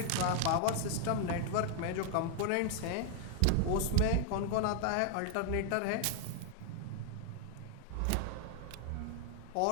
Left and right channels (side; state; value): both; different; correlation 0.00